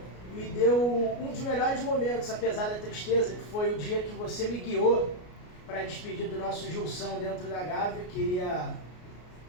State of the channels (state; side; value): late; right; 33 ms